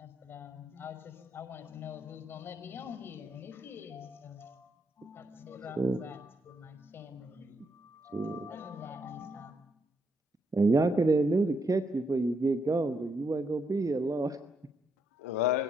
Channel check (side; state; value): both; normal; correlation 0.77